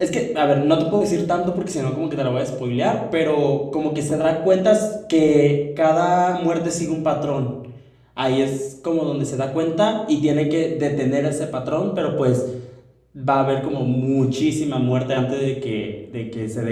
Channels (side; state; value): both; identical; correlation 1.00